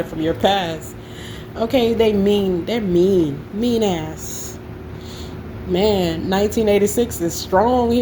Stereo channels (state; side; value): identical; both; correlation 1.00